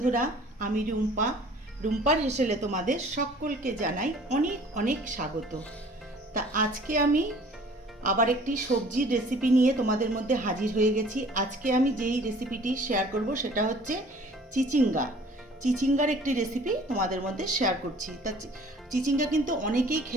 আমি রুম্পা। রুম্পার হেসেলে তোমাদের সকলকে জানাই অনেক অনেক স্বাগত। তা আজকে আমি আবার একটি সবজির রেসিপি নিয়ে তোমাদের মধ্যে হাজির হয়ে গেছি। আজকে আমি যেই রেসিপিটি শেয়ার করব সেটা হচ্ছে চিচিঙ্গা। চিচিঙ্গার একটি রেসিপি তোমাদের মধ্যে শেয়ার করছি। তা চিচিঙ্গা কিন্তু অনেকেই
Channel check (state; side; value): normal; both; correlation 0.51